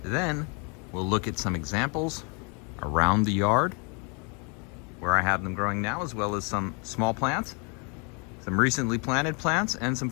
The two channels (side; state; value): right; quieter; 34.3 dB